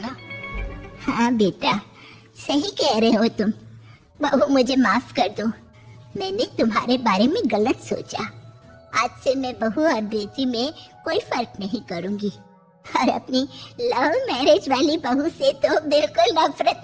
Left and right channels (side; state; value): both; identical; correlation 1.00